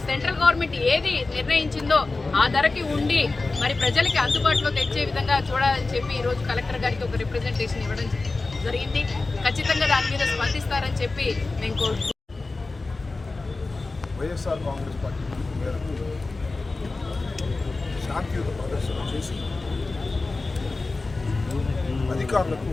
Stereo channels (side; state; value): right; quieter; 3.5 dB